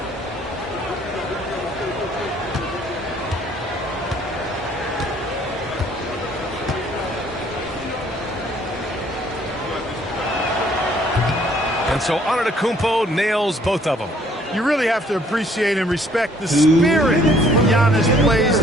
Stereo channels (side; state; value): both; normal; correlation 0.62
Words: And so Antetokounmpo nails both of them. You really have to appreciate and respect the spirit Giannis plays